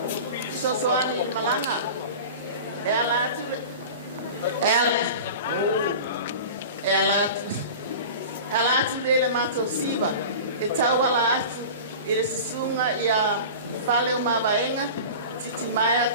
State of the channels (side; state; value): both; inverted; correlation -0.34